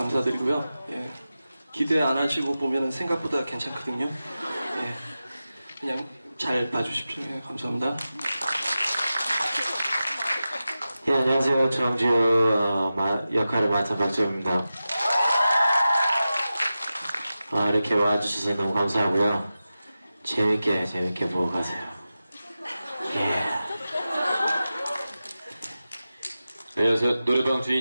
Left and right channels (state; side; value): inverted; both; correlation -0.93